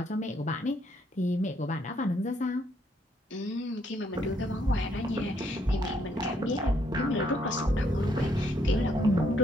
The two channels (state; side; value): normal; both; correlation 0.71